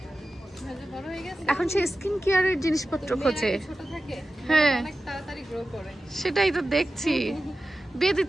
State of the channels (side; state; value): both; normal; correlation 0.93